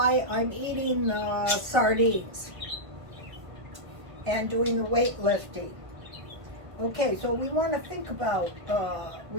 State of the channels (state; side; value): late; left; 1.7 ms